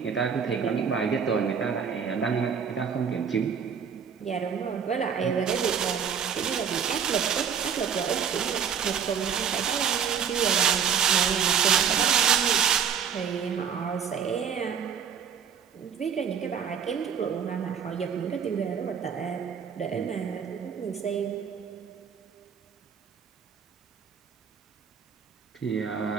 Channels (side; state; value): left; quieter; 7.4 dB